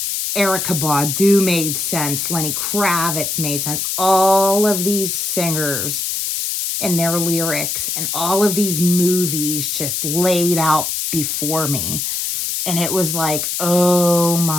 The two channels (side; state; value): left; noise; hiss, 2 dB below the sound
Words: Erykah Badu made sense, Lenny Kravitz made sense, all of these singers and their lyrics and all of these movies just laid out before me. And it was like, oh